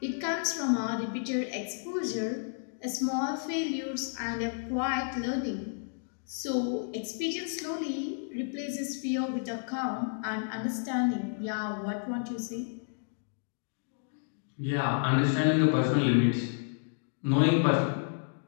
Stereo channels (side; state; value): right; silent; digital silence